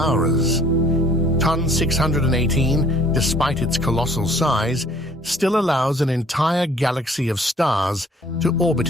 TON 618, despite its colossal size, still allows an entire galaxy of stars to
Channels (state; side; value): normal; both; correlation 0.56